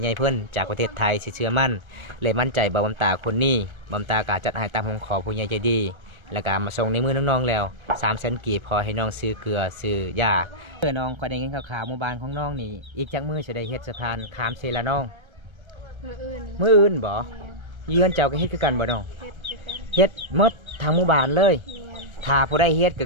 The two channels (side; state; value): left; late; 1.3 ms